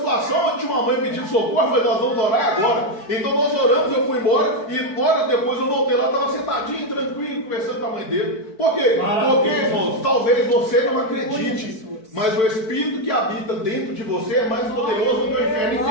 onde tinha uma mãe pedindo socorro, eu falei, nós vamos orar agora. Então nós oramos, eu fui embora, e horas depois eu voltei lá, estava sentadinho, tranquilo, conversando com a mãe dele. Por quê? Porque, irmãos, talvez você não acredite, mas o Espírito que habita dentro de você é mais poderoso do que o inferno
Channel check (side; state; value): right; late; 4.6 ms